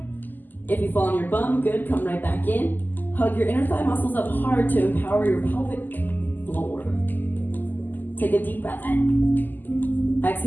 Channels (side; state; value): right; late; 0.087 ms